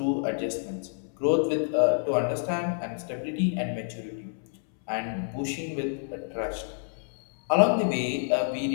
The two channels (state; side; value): silent; right; 59 dB below the other